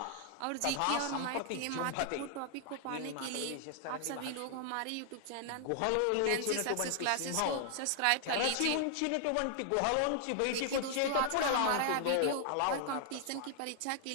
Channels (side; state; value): both; different; correlation 0.00